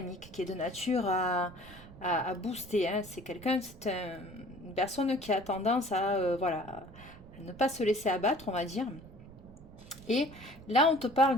qui est de nature à booster. Hein. C'est quelqu'un, une personne qui a tendance à, voilà, à ne pas se laisser abattre, on va dire. Et là, on te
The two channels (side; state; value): right; noise; rumble, 18 dB below the sound